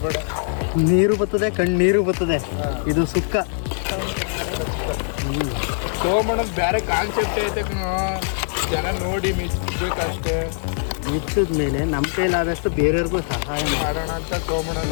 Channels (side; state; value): right; silent; 64 dB below the other